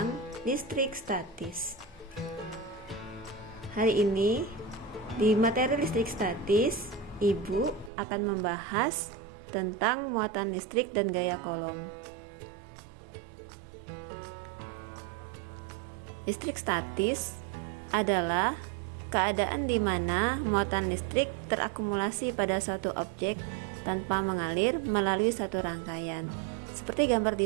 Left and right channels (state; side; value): drops out; left; at 7.9 s